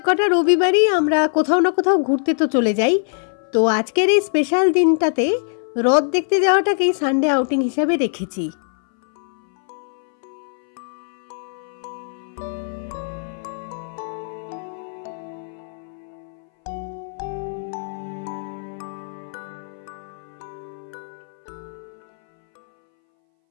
কটা রবিবারই আমরা কোথাও না কোথাও ঘুরতে তো চলে যাই। তো আজকের এই স্পেশাল দিনটাতে রথ দেখতে যাওয়াটাকেই সানডে আউটিং হিসাবে রেখেছি।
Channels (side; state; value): right; silent; 61 dB below the other